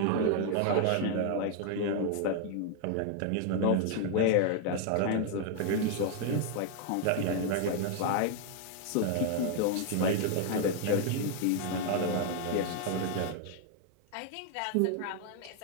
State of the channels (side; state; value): both; different; correlation 0.00